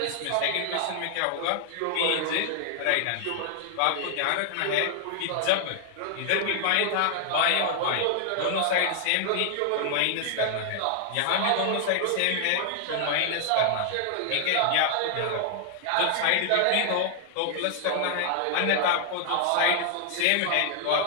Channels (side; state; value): both; different; correlation 0.00